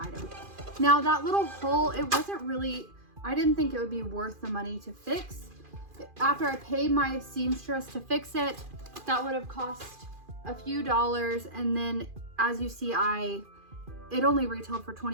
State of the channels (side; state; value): left; late; 2.4 ms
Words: Now that little hole, it wasn't really, I didn't think it would be worth the money to fix. After I paid my seamstress to fix it, that would have cost a few dollars, and then as you see, it only retailed for